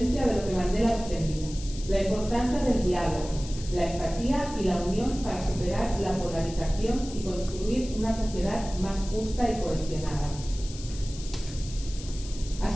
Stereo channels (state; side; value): noise; left; hiss, 14 dB below the sound